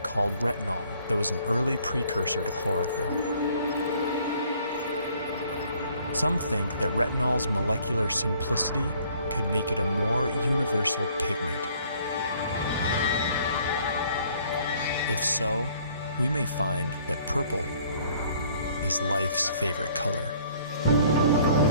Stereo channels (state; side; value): inverted; both; correlation -0.59